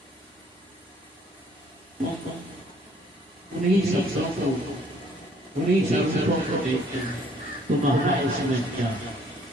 उन्हीं शब्दों को, उन्हीं शब्दों को देखते हैं। तुम्हारा इसमें क्या?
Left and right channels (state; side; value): normal; both; correlation 0.61